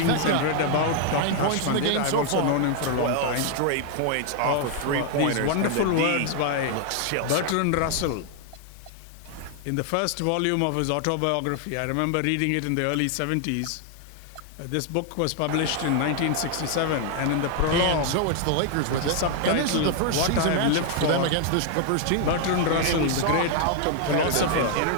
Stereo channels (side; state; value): both; different; correlation 0.00